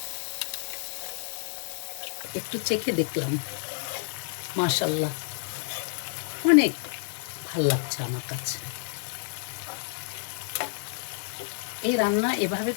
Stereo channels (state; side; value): silent; right; digital silence